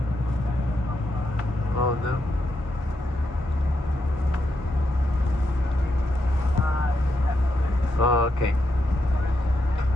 Oh no. Oh, okay.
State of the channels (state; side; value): normal; both; correlation 0.82